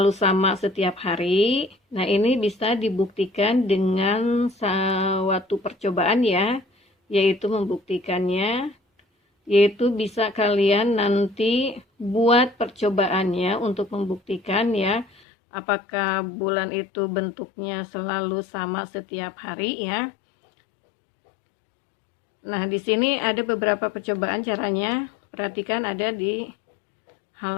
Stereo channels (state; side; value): drops out; right; at 15.2 s